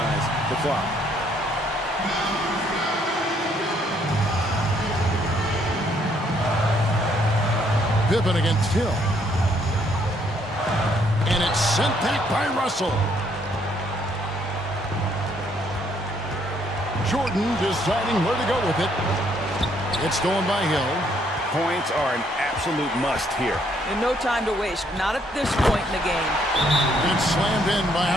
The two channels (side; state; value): both; normal; correlation 0.69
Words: the clock. Pippen against Hill. And it's sent back by Russell. Jordan deciding where to go with it. It's going by Hill. Points are an absolute must here. And no time to waste. Not at this point in the game. It's slammed in by